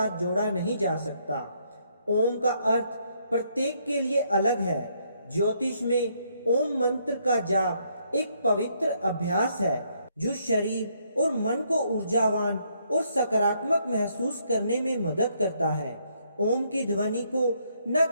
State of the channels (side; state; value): both; inverted; correlation -0.72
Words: जोड़ा नहीं जा सकता। ओम का अर्थ प्रत्येक के लिए अलग है। ज्योतिष में ओम मंत्र का जाप एक पवित्र अभ्यास है जो शरीर और मन को ऊर्जावान और सकारात्मक महसूस करने में मदद करता है। ओम की ध्वनि को न